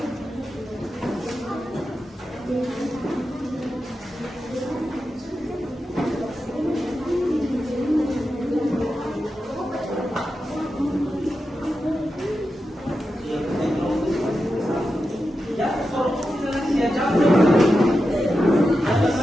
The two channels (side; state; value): both; normal; correlation 0.90